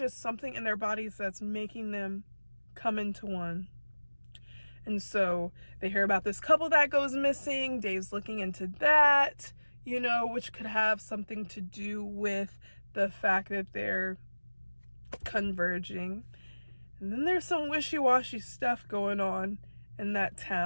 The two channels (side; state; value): both; inverted; correlation -1.00